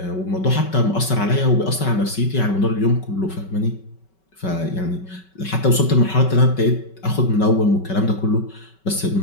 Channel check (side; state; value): right; late; 5.3 ms